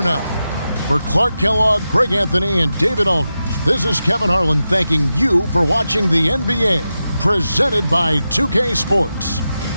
now. For Clark Kellogg, Greg Anthony, and David Aldridge, this is Kevin Harlan thanking you for watching the NBA, presented by 2K Sports.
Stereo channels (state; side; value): inverted; both; correlation -0.91